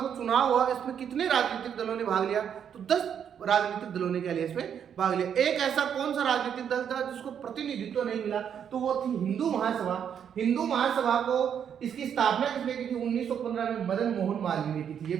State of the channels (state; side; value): quieter; left; 8.3 dB